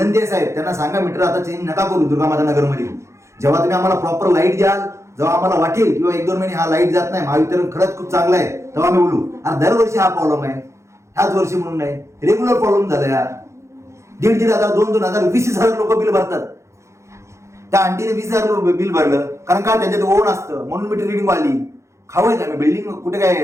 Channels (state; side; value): late; left; 0.14 ms